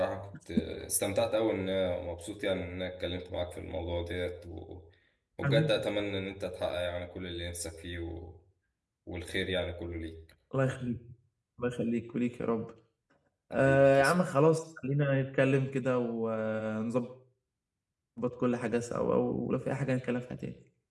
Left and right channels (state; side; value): identical; both; correlation 1.00